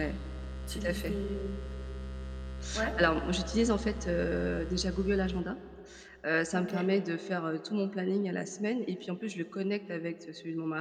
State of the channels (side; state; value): both; identical; correlation 1.00